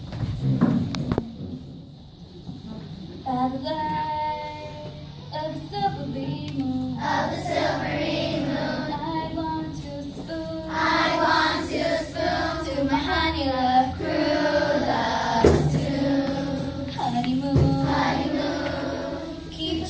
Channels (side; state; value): both; identical; correlation 1.00